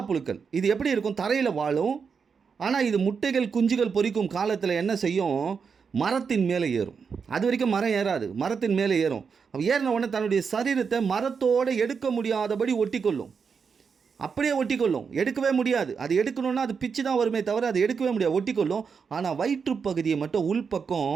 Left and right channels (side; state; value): left; quieter; 5.9 dB